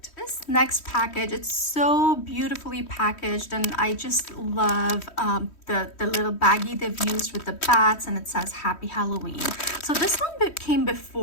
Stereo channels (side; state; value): right; late; 3.1 ms